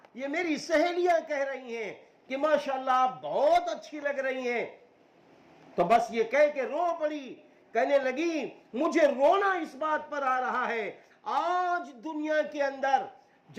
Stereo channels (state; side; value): identical; both; correlation 1.00